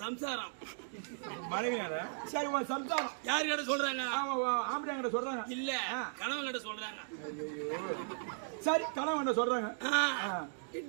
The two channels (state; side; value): silent; left; digital silence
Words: சம்சாரம் மனைவி சரி உன் சம்சாரம் யாரு கிட்ட சொல்றாங்க ஆம்படியா கிட்ட சொல்றாங்க இல்ல கணவன் கிட்ட சொல்றாங்க சரி கணவன் சொல்றாங்க